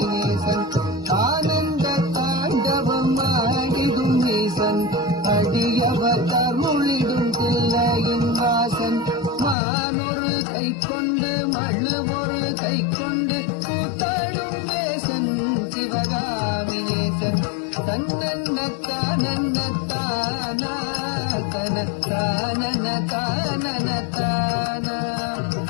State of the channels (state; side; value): drops out; right; at 9.6 s